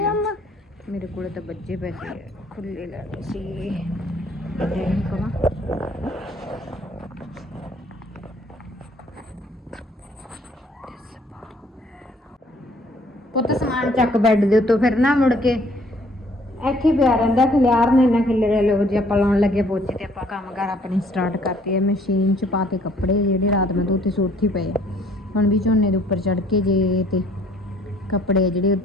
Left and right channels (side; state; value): both; normal; correlation 0.60